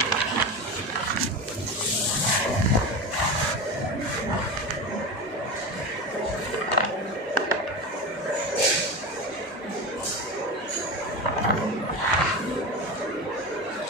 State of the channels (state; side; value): normal; both; correlation 0.24